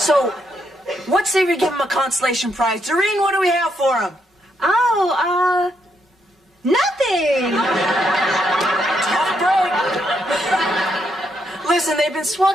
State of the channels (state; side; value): normal; both; correlation 0.77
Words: what say we give him a consolation prize? Doreen, what do we have for him? Oh, nothing. Tough break. Listen, they've been swell